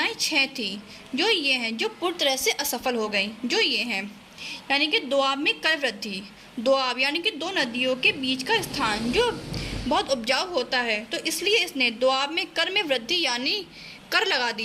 6 थी, जो ये हैं, जो पूरी तरह से असफल हो गई। जो ये हैं, यानी कि दोआब में कर वृद्धि। दोआब यानी कि दो नदियों के बीच का स्थान जो बहुत उपजाऊ होता है, तो इसलिए इसने दोआब में कर में वृद्धि यानी कर लगा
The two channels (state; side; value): identical; both; correlation 1.00